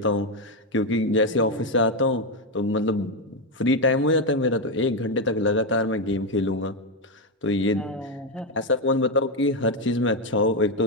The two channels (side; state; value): both; normal; correlation 0.06